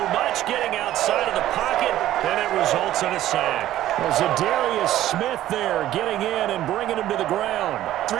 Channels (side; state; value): left; quieter; 13.5 dB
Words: much, getting outside of the pocket, and it results in a sack. There's a Darius Smith there getting in and bringing him to the ground.